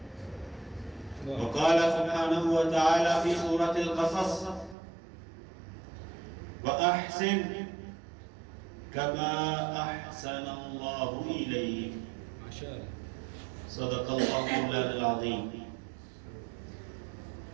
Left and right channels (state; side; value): drops out; left; at 4.8 s